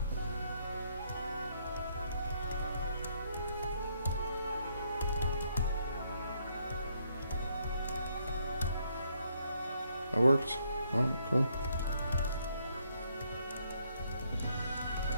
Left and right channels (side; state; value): both; inverted; correlation -0.71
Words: that worked. All right, cool.